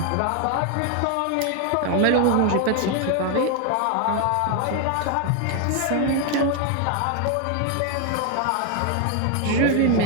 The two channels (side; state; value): both; different; correlation 0.01